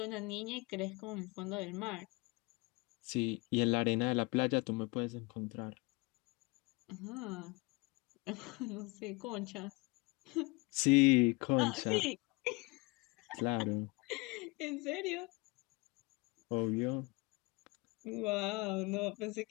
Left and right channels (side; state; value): right; quieter; 26.4 dB